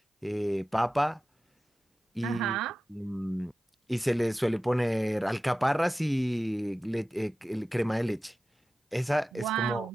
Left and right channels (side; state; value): both; normal; correlation 0.94